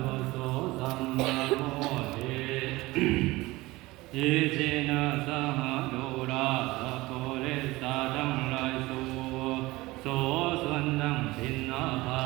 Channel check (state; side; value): quieter; left; 20.2 dB